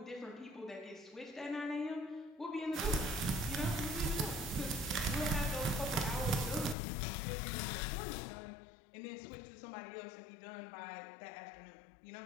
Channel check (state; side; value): drops out; right; at 6.8 s